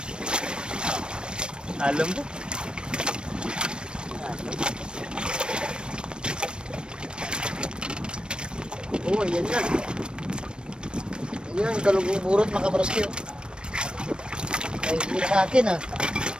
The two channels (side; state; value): left; late; 0.053 ms